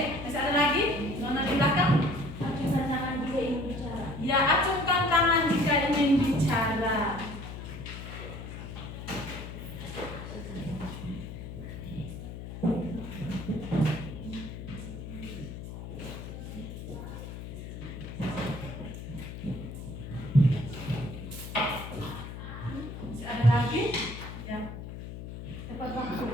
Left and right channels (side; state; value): left; noise; hum, 9 dB below the sound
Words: masih ada lagi? Nona di belakang? Acungkan tangan jika ingin bicara. Ya, acungkan tangan jika ingin bicara. Masih ada lagi? Ya. Tepat waktu.